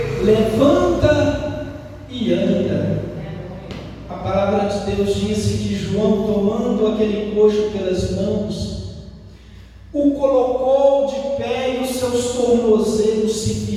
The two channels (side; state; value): both; identical; correlation 1.00